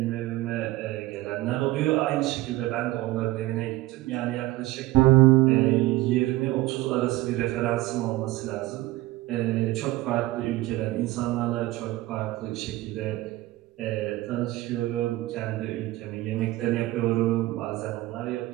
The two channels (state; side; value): quieter; left; 17.7 dB